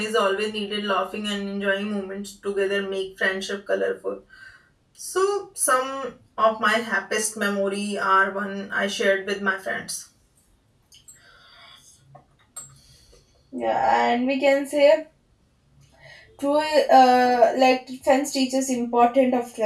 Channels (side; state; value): both; identical; correlation 1.00